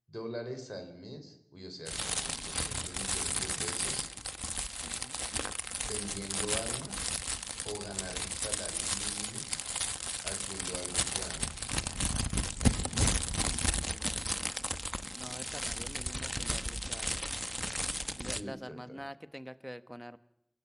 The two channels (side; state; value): both; identical; correlation 1.00